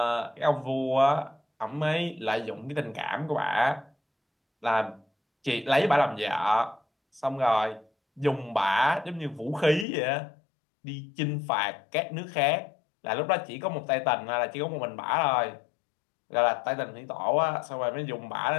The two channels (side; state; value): right; drops out; at 9.9 s